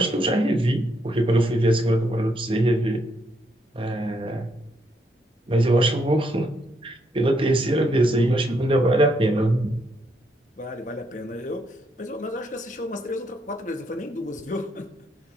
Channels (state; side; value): normal; both; correlation 0.75